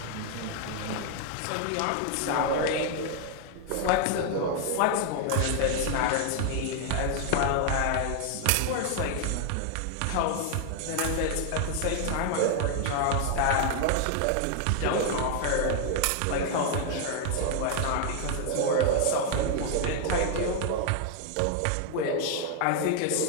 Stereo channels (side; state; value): both; different; correlation 0.00